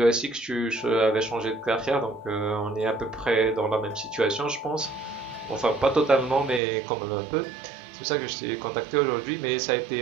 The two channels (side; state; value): left; drops out; at 6.6 s